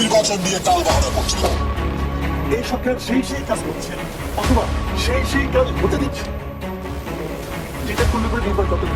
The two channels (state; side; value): identical; both; correlation 1.00